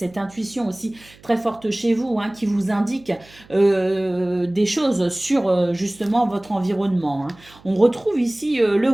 intuition aussi très forte chez vous, hein, qui vous indique des choses sur justement votre environnement, hein. On retrouve ici le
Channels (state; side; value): noise; right; hum, 26 dB below the sound